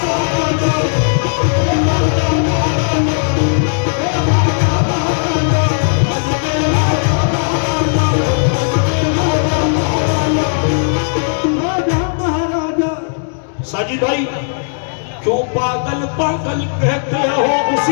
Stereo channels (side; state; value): right; silent; digital silence